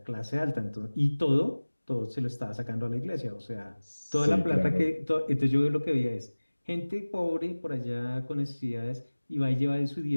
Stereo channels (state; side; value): inverted; both; correlation -1.00